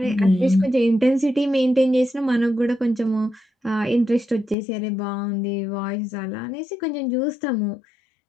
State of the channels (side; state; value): right; drops out; at 4.5 s